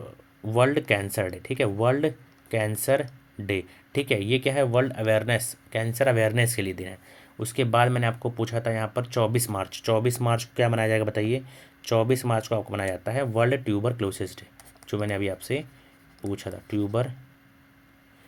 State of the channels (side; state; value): both; identical; correlation 1.00